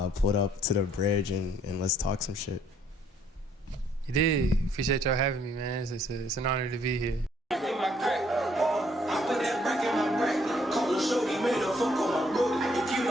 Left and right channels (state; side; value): normal; both; correlation 0.66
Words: Pulled up to the bridge and let's talk some shit. You did. Appreciate y'all having me, man. It's an honor to be here.